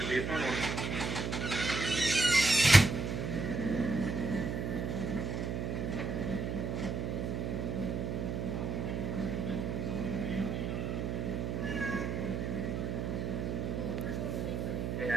Should be a fun one.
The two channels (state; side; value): noise; right; hum, 1 dB below the sound